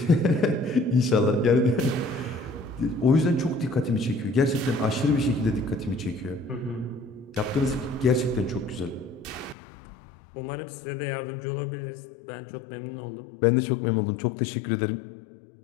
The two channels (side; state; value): right; drops out; at 9.6 s